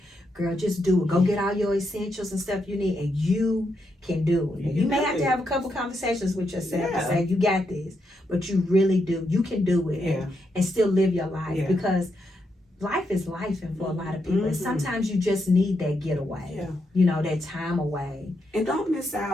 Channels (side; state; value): both; normal; correlation 0.81